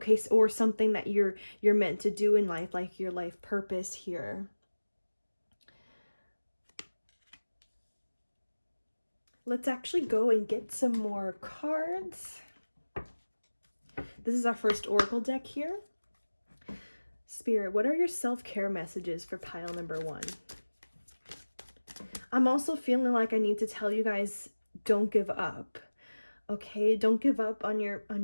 so, or something that you're meant to do in life, like your life purpose here. Let's actually go and get some more cards. This is our first oracle deck here. Spirit, what are your self-care messages for pile number 1? I'm also feeling like I need to tell you guys, don't give up. Okay, don't give up on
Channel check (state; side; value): inverted; both; correlation -1.00